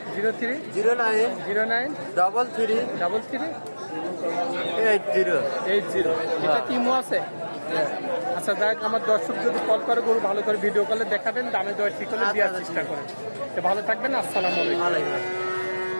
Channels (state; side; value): inverted; both; correlation -1.00